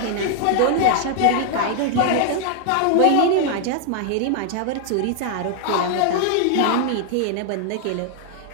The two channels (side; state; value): both; different; correlation 0.00